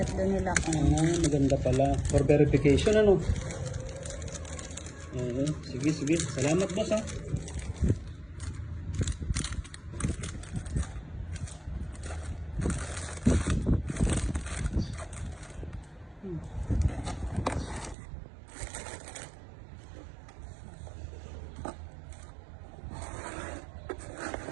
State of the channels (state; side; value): drops out; left; at 17.9 s